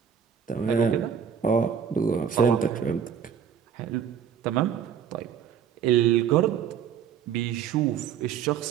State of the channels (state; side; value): quieter; left; 7.9 dB